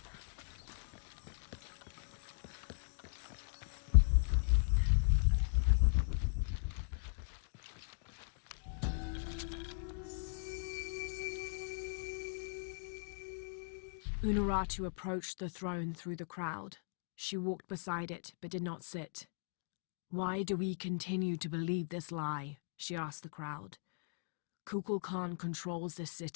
Unuratu approached the throne through the crowd. She walked beside it, but did not sit. "Why do we continue to believe this lie?" she asked the crowd. "Kukul Khan controls this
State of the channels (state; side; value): silent; right; digital silence